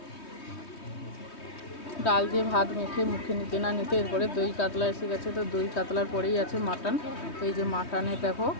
ডাল দিয়ে ভাত মেখে মুখে নিতে না নিতে এরপরে দই কাতলা এসে গেছে। তো দই কাতলার পরেই আছে মাটন। তো এই যে মাটনে দেখো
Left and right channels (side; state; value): right; late; 3.2 ms